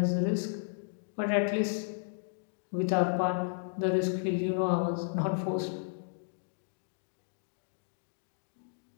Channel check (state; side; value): silent; right; digital silence